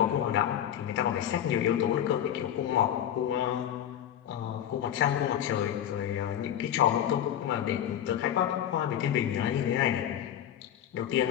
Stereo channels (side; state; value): right; quieter; 10.4 dB